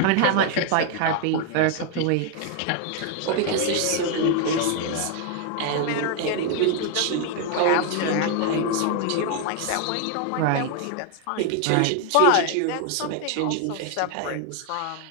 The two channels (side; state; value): both; different; correlation 0.01